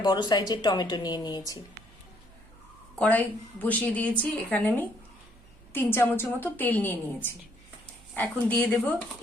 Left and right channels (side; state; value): right; noise; hum, 25 dB below the sound